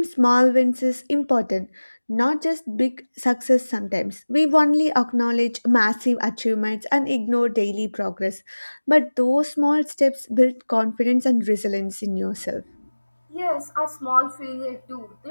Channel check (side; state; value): both; inverted; correlation -1.00